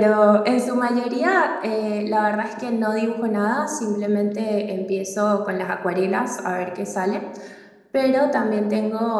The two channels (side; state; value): both; identical; correlation 1.00